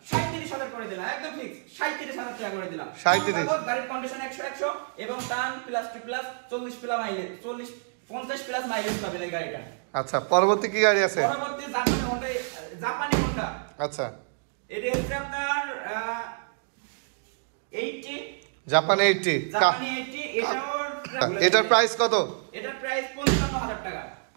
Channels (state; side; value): silent; left; digital silence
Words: 37,000 করে দিলাম, একদম ফিক্স 37,000 টাকা করে দিলাম। 37? গাড়ির কন্ডিশন 100 এবং টান plus two plus 40 plus mileage, 50 plus mileage পাবেন এই গাড়িটা। আচ্ছা, পরবর্তী কি গাড়ি আছে? পরবর্তী জাপানি হোন্ডা। আচ্ছা, এটা হচ্ছে আপনার 80। জাপানি 80? জাপানি 80। এটার প্রাইস কত? এটার প্রাইস 55,000 টাকা।